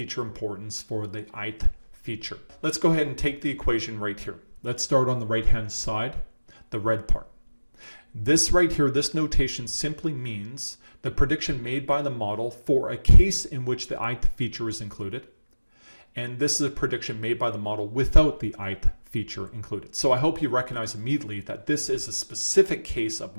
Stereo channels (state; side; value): inverted; both; correlation -1.00